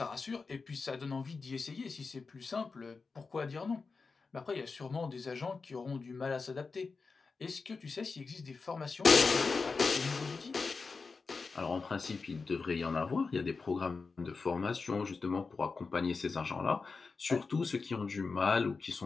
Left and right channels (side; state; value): right; quieter; 4.5 dB